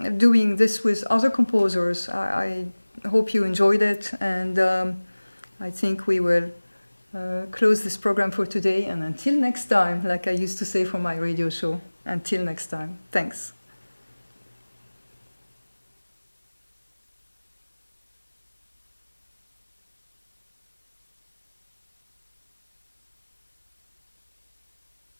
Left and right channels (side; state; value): both; inverted; correlation -1.00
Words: doing this with other composers. I hope you enjoyed it, and I think we will close this program for today, and until next time, like I used to say for my radio show, until next time. Thanks.